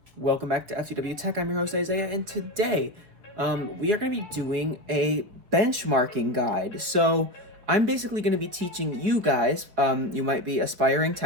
Welcome back to FTW Tech. I'm your host Isaiah, and today we are going to be doing a benchmarking guide. So I'm basically going to be teaching you guys, you might be aspiring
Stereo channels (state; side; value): late; left; 4.5 ms